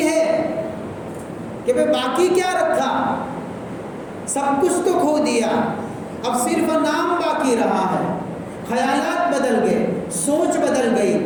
ہے کہ بھئی باقی کیا رکھا، سب کچھ تو کھو دیا، اب صرف نام باقی رہا ہے۔ خیالات بدل گئے، سوچ بدل گئی،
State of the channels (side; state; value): both; identical; correlation 1.00